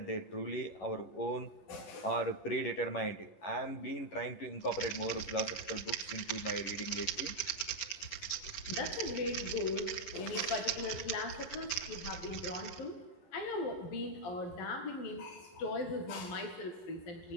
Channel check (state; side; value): late; right; 10 ms